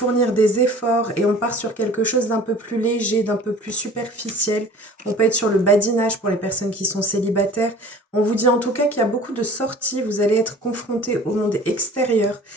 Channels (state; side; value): normal; both; correlation 0.45